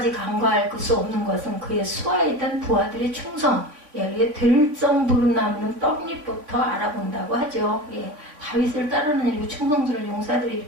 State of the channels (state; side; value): late; left; 3.5 ms